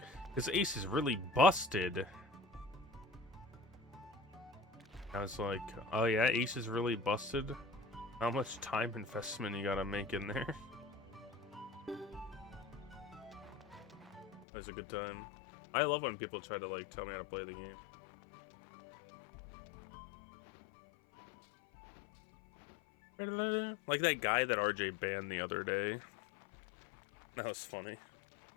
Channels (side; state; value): right; drops out; at 14.5 s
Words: "Because Ace is really busted." I was like, "Oh yeah, Ace is really busted? How much time investment you gotta make in there?" It was a good time. I love when people try to like tell me how to play the game. Like that guy that RJ banned the other day. That was funny.